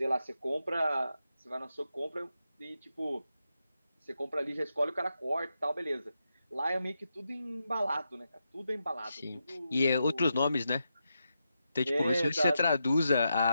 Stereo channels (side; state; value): both; inverted; correlation -0.86